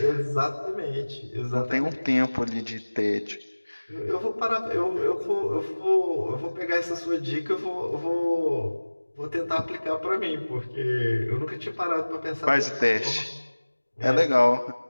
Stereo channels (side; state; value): both; inverted; correlation -1.00